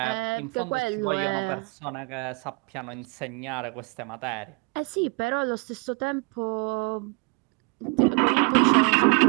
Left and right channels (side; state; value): left; quieter; 31.8 dB